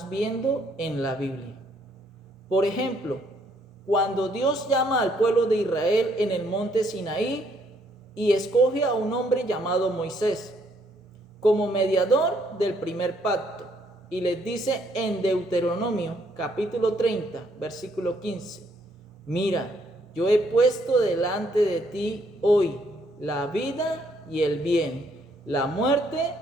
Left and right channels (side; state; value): both; normal; correlation 0.69